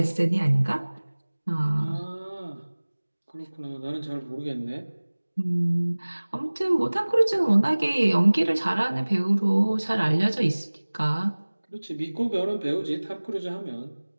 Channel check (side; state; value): both; inverted; correlation -1.00